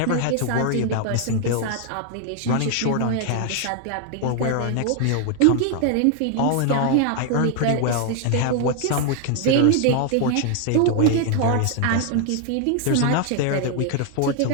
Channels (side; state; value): both; different; correlation 0.00